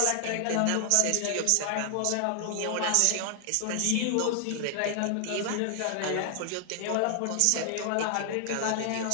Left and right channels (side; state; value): both; different; correlation 0.00